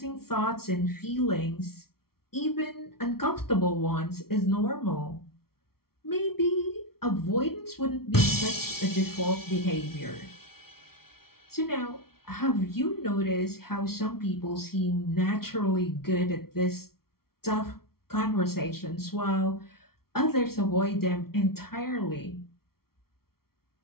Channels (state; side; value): late; right; 0.94 ms